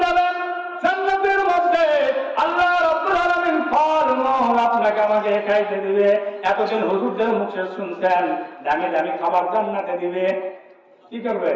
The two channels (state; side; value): identical; both; correlation 1.00